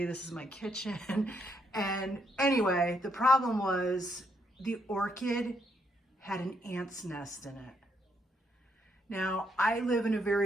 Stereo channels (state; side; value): normal; both; correlation 0.75